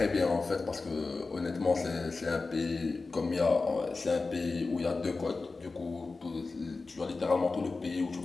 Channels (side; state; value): right; quieter; 3.8 dB